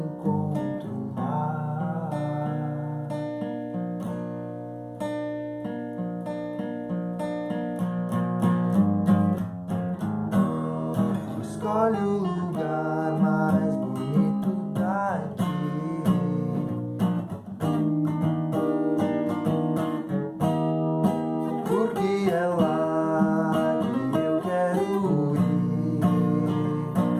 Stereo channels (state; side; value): identical; both; correlation 1.00